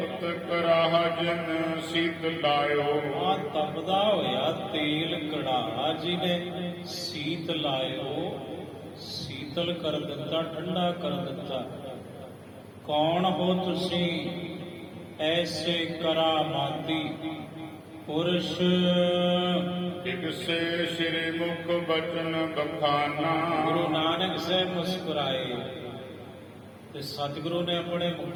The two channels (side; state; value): both; identical; correlation 1.00